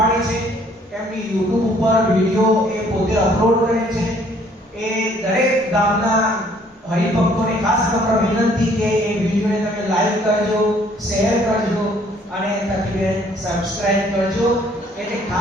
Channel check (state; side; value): normal; both; correlation 0.61